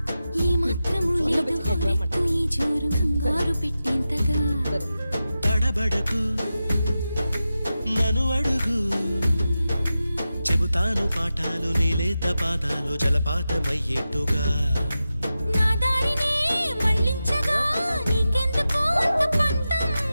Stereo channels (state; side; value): inverted; both; correlation -0.92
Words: ఏ మాత్రము లేదు హోరెత్తు ఈ జోరు కంగారు పెట్టేంతగా తడబడకు నన్ను అడుగు చెబుతాను పాఠాలు నీలేత పాదాలు జలపాతమయ్యేట్టుగా నా దారినే మళ్ళించగా నీకెందుకు అంత పంతం